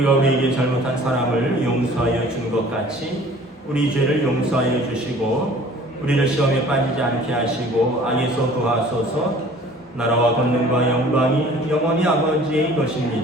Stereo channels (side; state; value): both; normal; correlation 0.49